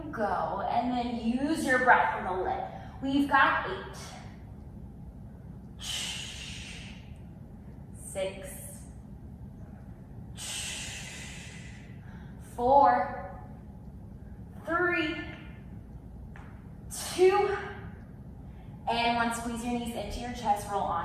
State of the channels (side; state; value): both; identical; correlation 1.00